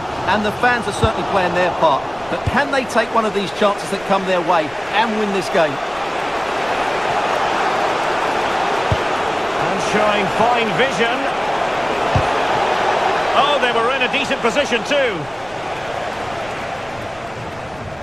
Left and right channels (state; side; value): noise; right; rumble, 23 dB below the sound